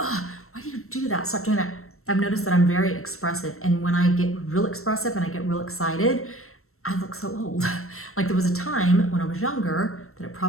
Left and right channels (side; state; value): right; late; 0.63 ms